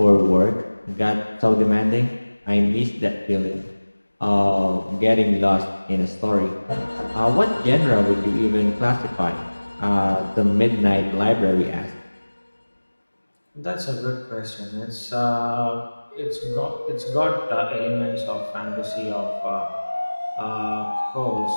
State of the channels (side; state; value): both; inverted; correlation -1.00